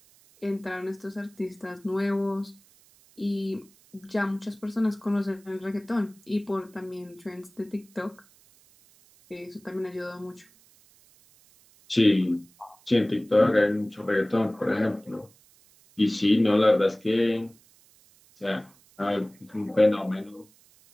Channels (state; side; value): noise; right; hiss, 29 dB below the sound